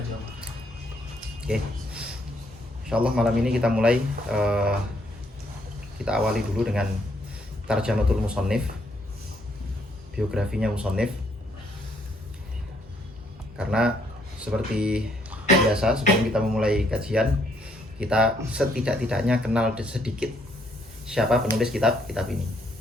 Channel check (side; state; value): both; normal; correlation 0.70